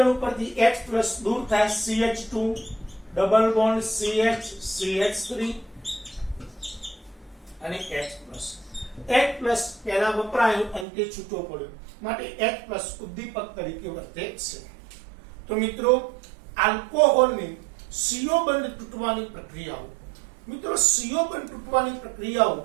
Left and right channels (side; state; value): left; drops out; at 10.9 s